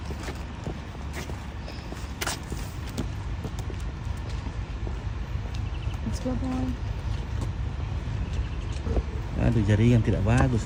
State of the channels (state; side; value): identical; both; correlation 1.00